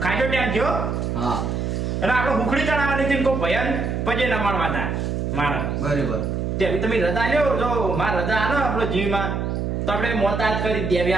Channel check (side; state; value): right; noise; hum, 1 dB below the sound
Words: ટાઈમ થયો હા એટલે આપણે હુખડી ચડાવવાની હતી કોઈ ભયન પજે ન મારવા હતા મારા બરાબર તે તમે રજા લ્યો જો મારા રજા આનો આપણો જીવમાં તો આપણે મોતા જ કરી